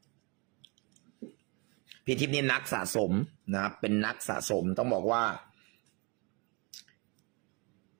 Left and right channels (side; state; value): left; quieter; 30.0 dB